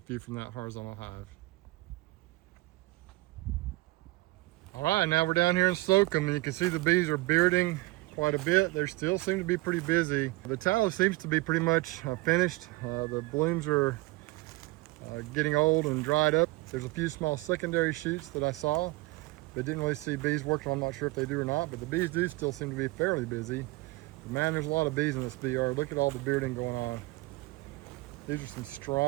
from that horizontal hive. All right, now we're down here in Slocum, and you can see the bees are bearding quite a bit. They still seem to be pretty busy. The tallow seems to be pretty much finished. The blooms are getting old and dried up. There's a few small secondary shoots that I saw, but didn't really see bees working. I'm not sure if they do or not, but the bees do still seem to be fairly busy. But man, there's a lot of bees in this bee yard. Look at all the bearding going on. These are some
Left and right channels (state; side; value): quieter; left; 22.0 dB